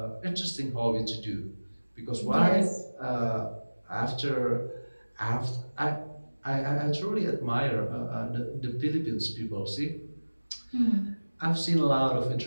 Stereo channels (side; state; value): both; inverted; correlation -1.00